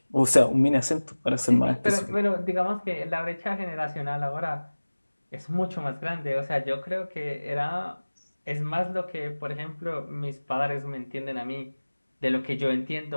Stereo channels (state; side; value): inverted; both; correlation -1.00